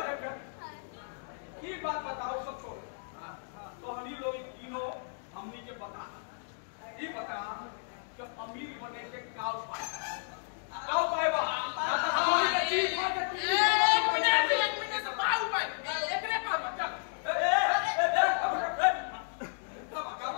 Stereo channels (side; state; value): right; silent; digital silence